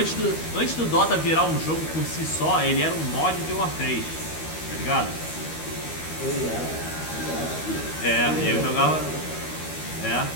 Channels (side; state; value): right; late; 13 ms